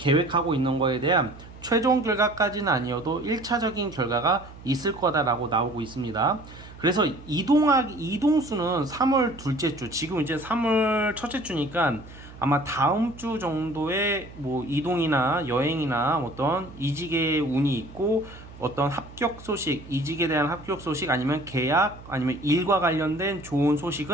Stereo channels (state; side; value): noise; right; hum, 18 dB below the sound